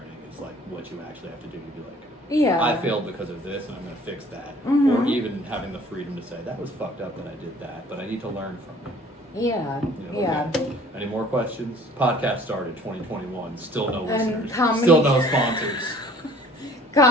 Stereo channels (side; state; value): both; normal; correlation 0.52